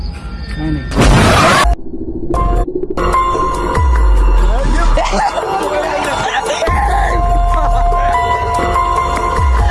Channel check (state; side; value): identical; both; correlation 1.00